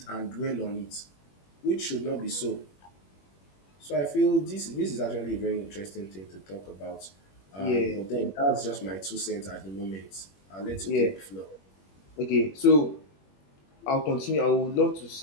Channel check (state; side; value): late; right; 21 ms